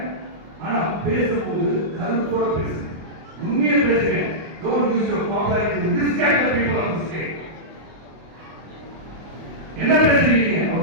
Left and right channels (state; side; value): late; left; 25 ms